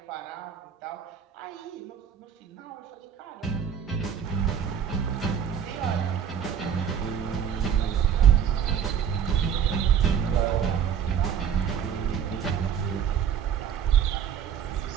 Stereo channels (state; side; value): quieter; left; 8.2 dB